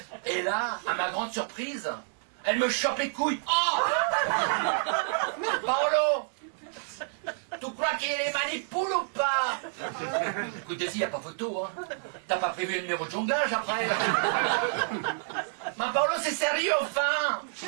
Et là, à ma grande surprise, elle me chope les couilles. Oh Paolo, tu crois qu'il les manipule ou pas? Écoute, Daisy, y a pas photo, hein. T'as pas prévu un numéro de jonglage après? Ma Paolo, c'est sérieux, enfin.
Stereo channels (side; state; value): left; silent; digital silence